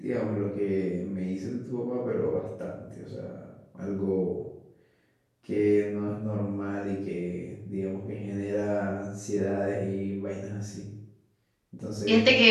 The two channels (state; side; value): identical; both; correlation 1.00